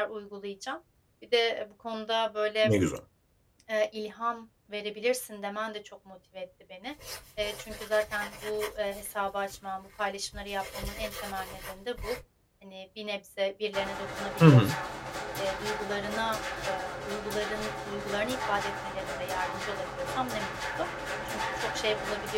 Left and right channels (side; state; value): both; identical; correlation 1.00